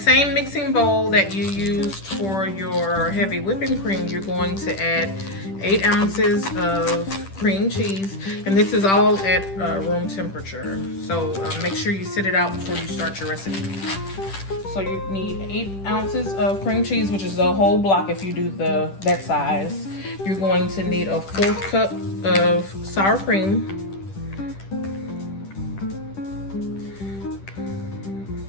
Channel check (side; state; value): right; late; 10 ms